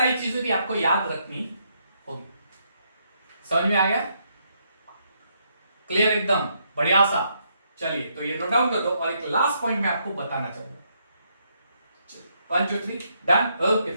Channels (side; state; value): both; inverted; correlation -0.75